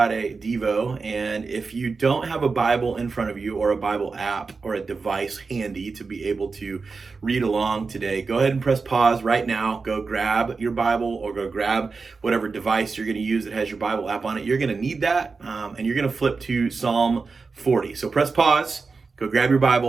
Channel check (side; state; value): left; quieter; 4.5 dB